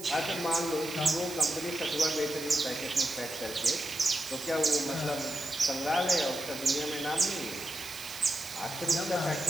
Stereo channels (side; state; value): right; noise; hiss, 12 dB below the sound